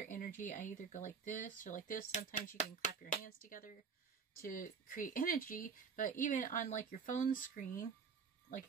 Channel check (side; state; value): left; quieter; 6.0 dB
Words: energy. I either go like this or like this. Sometimes you can clap your hands together to create energy, but even on like your phone screen,